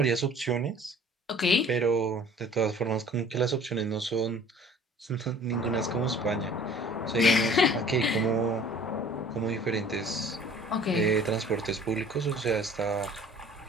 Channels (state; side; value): normal; both; correlation 0.50